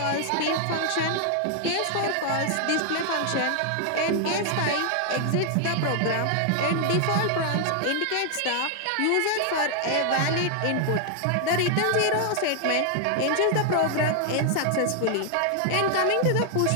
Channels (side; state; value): both; different; correlation 0.00